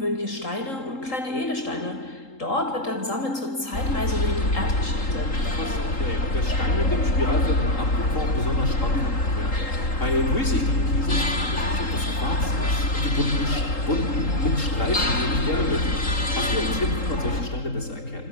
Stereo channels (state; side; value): late; right; 3.8 ms